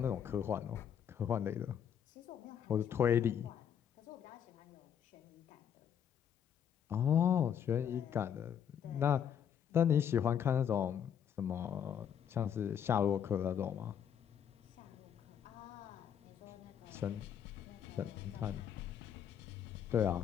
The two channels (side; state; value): right; quieter; 8.7 dB